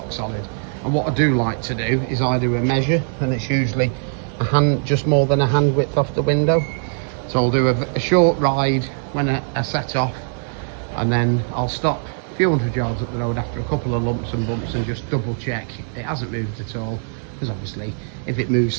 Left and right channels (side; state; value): left; silent; 65 dB below the other